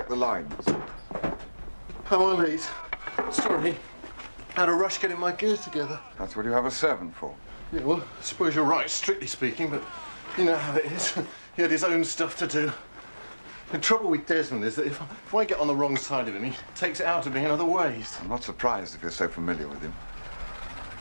the lines. How are these? Sorry. Had a rush getting my gear together. That's what you have a servant for. Yeah, well, I suppose you're right, strictly speaking, but you know how it is. He had his own stuff to do. The trouble with Desmond is that if I get on the wrong side of him, he takes it out of me in other ways. I'm not surprised if you're so familiar with him.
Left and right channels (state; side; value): inverted; both; correlation -1.00